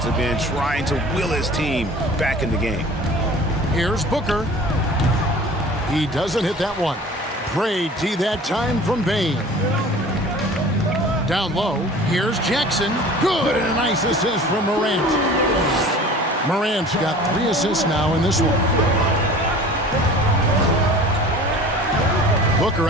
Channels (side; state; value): both; normal; correlation 0.43